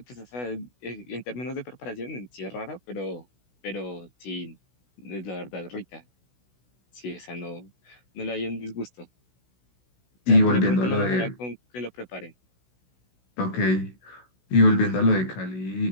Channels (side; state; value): right; late; 16 ms